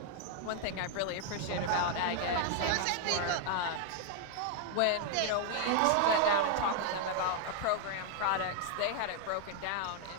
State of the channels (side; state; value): both; different; correlation 0.00